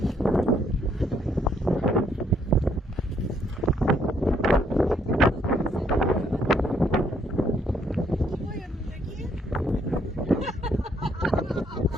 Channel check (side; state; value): both; normal; correlation 0.69